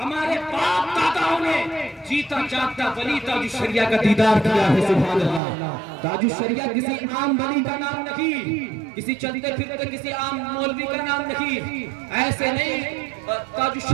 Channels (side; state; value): left; drops out; at 5.4 s